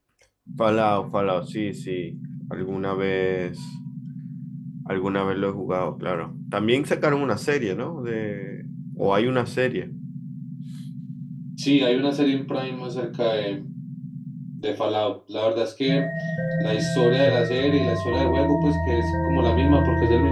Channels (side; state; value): both; identical; correlation 1.00